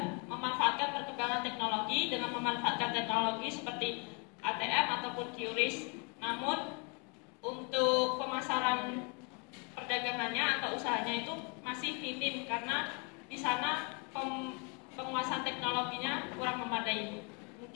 memanfaatkan perkembangan teknologi dengan memanfaatkan teknologi seperti ATM ataupun QRIS. Namun untuk pemasaran perdagangannya atau usahanya itu masih minim karena di sana penguasaan teknologinya kurang memadai.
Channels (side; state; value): right; quieter; 33.5 dB